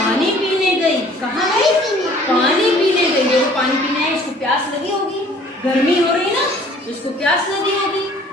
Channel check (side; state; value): both; normal; correlation 0.54